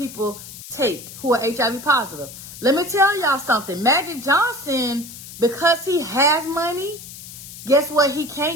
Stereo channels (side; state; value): left; noise; hiss, 14 dB below the sound